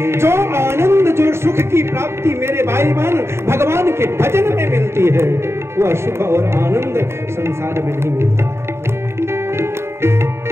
जो आनंद, जो सुख की प्राप्ति मेरे भाई बहन भगवान के भजन में मिलती है, वह सुख और आनंद संसार में नहीं मिलता है।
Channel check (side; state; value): left; late; 0.12 ms